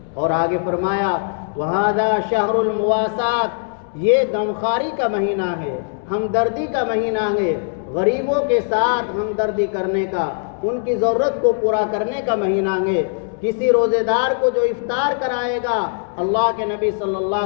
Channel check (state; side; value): silent; right; digital silence